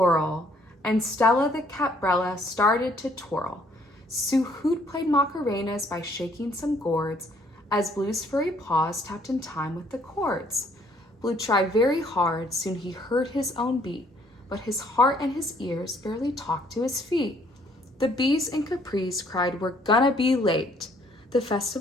and Stella the caprella started to twirl. Sue Hoot played macarenas by shaking some gourds as Blue's furry paws tapped in time with the chords. Blue tried very hard, soon he heard his own beat, but his heart and his ears barely talked to his feet. The bees in Capris cried, "We're gonna be late." The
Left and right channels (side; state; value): both; normal; correlation 0.64